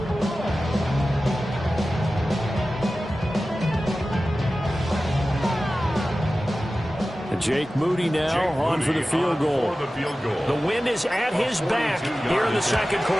Jake Moody now on for the field goal. The wind is at his back here in the second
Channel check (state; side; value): normal; both; correlation 0.95